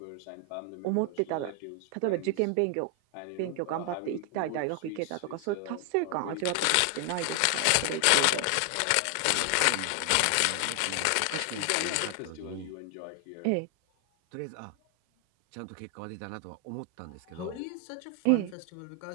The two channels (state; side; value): different; both; correlation 0.00